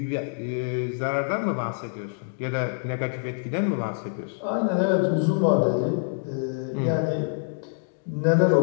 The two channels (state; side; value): silent; right; digital silence